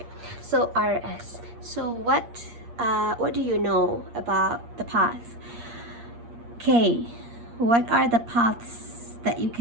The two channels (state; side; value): late; left; 8.5 ms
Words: so RS. So what do you know about the path? Okay, what are the paths that you